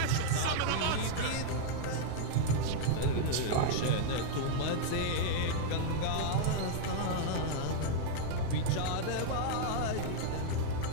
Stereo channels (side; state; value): both; different; correlation -0.01